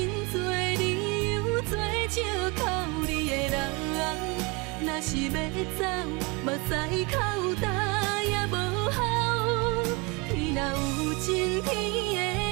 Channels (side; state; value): left; quieter; 28.3 dB